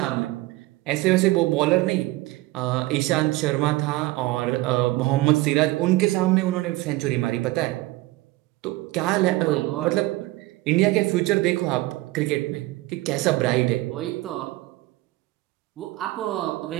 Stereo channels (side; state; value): left; quieter; 19.3 dB